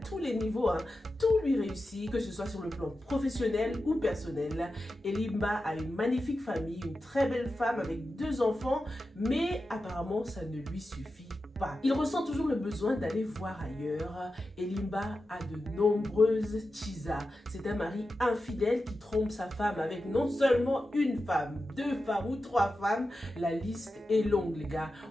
les niveaux, hein. Tout lui réussit, que ce soit sur le plan professionnel ou personnel. Elimba a une magnifique famille, une très belle femme avec 2 enfants, mais apparemment ça ne lui suffit pas. Il ressent toujours le besoin d'aller voir ailleurs. Elimba a de nombreuses chisas. C'est un mari infidèle qui trompe sa femme avec non seulement une femme, 2 femmes ou 3 femmes. La liste est longue, les gars.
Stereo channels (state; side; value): normal; both; correlation 0.92